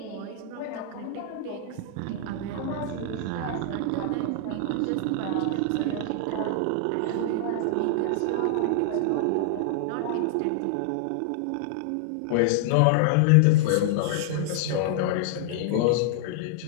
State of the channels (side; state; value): both; different; correlation -0.01